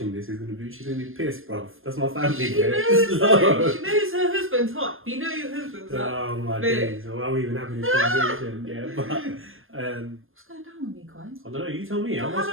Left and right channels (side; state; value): left; late; 0.60 ms